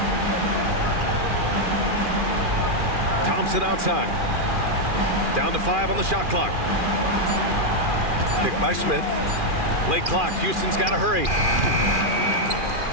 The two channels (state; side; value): late; left; 2.4 ms